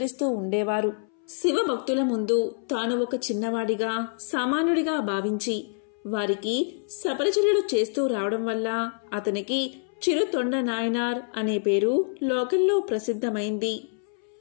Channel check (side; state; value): right; silent; 61 dB below the other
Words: ఉండేవారు. శివభక్తుల ముందు తాను ఒక చిన్నవాడిగా, సామాన్యుడిగా భావించి వారికి సపరిచర్యలు చేస్తూ రావడం వల్ల అతనికి చిరుతొండ నాయనార్ అనే పేరు లోకంలో ప్రసిద్ధమైంది.